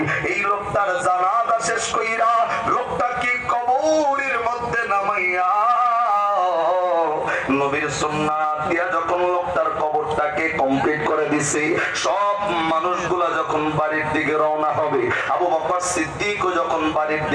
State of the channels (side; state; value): both; identical; correlation 1.00